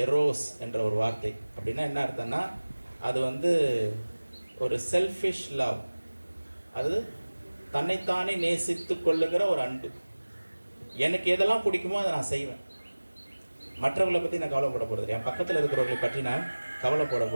எரோஸ் என்ற ஒரு வார்த்தை. அப்படின்னா என்ன அர்த்தம்னா, அது வந்து ஒரு செல்ஃபிஷ் லவ், அது தன்னைத்தானே நேசித்து கொள்ளுகிற ஒரு அன்பு. எனக்கு எதெல்லாம் பிடிக்குமோ அதை நான் செய்வேன். மற்றவர்களை பற்றி நான் கவலைப்பட போகிறதில்லை, என் பக்கத்தில் இருக்கிறவர்களை பற்றி நான் கவலைப்பட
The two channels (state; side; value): inverted; both; correlation -1.00